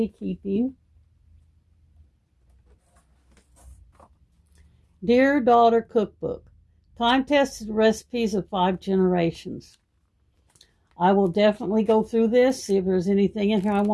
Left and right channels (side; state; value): both; identical; correlation 1.00